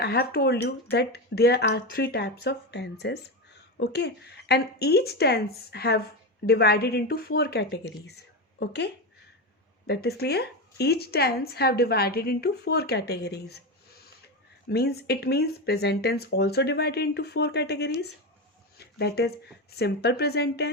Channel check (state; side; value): normal; both; correlation 0.16